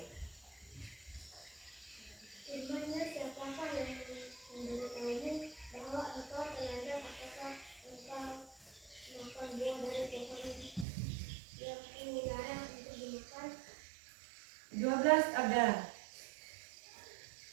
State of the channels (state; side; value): drops out; left; at 10.9 s